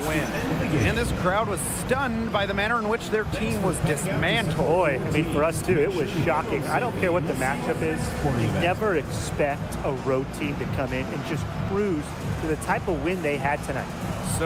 win. And this crowd was stunned by the manner in which their team was dismantled. Boy, I mean, for us too, it was shocking. I don't care what the matchup is. You never expect a road team to come in and just cruise to the type of win they had tonight.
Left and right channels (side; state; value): both; identical; correlation 1.00